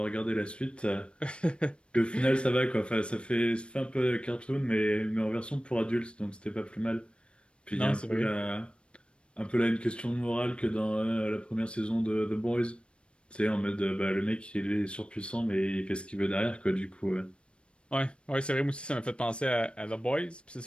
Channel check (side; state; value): right; late; 0.057 ms